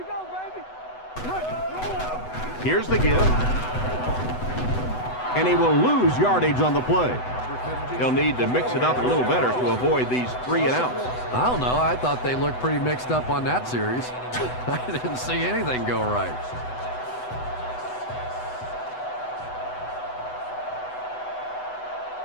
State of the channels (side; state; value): right; late; 8.0 ms